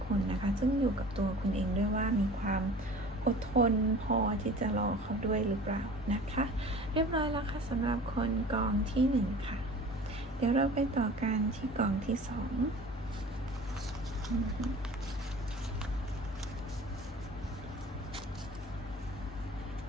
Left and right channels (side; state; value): both; normal; correlation 0.42